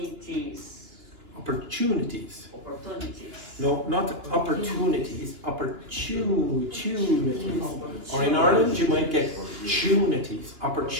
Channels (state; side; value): late; left; 2.9 ms